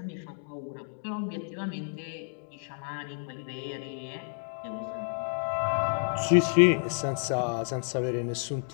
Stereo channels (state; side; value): silent; right; digital silence